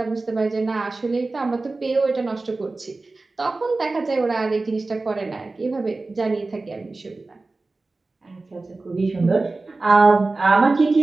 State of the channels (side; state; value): left; quieter; 3.4 dB